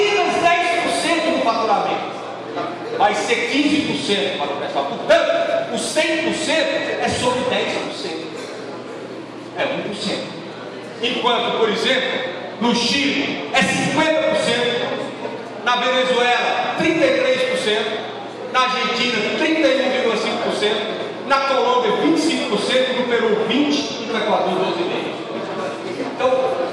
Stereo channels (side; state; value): both; identical; correlation 1.00